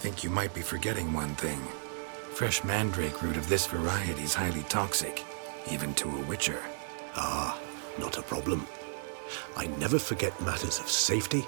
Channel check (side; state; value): left; silent; digital silence